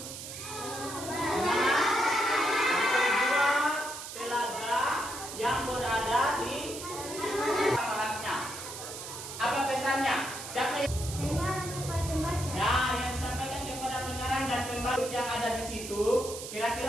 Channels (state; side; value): noise; right; hiss, 9 dB below the sound